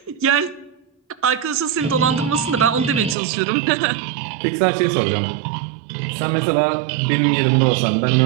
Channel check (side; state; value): left; drops out; at 3.2 s